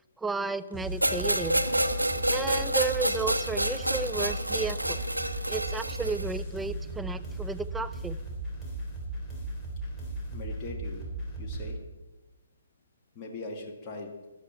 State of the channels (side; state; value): both; inverted; correlation -0.44